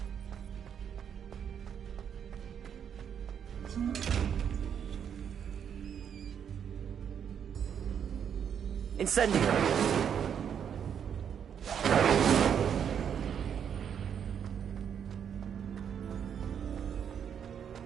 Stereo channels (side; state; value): left; quieter; 8.1 dB